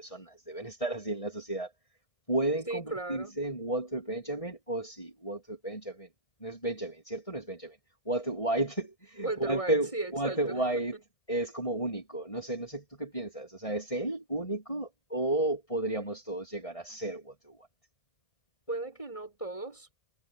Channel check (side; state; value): right; late; 1.6 ms